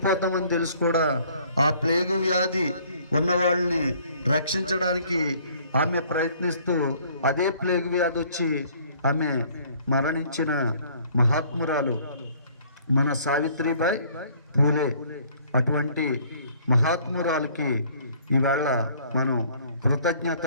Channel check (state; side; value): inverted; both; correlation -0.58